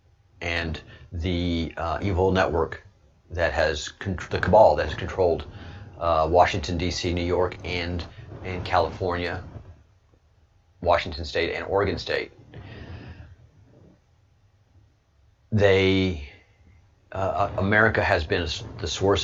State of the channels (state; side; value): identical; both; correlation 1.00